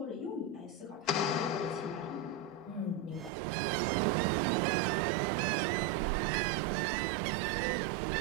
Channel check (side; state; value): left; drops out; at 3.3 s